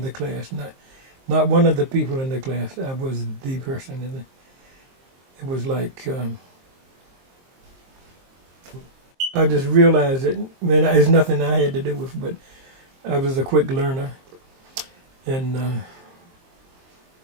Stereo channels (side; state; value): left; late; 23 ms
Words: class, not one of the people in the class. I was the person in it. It was like, I just realized that, it's nothing I had to do with, but I was a quick learner. And,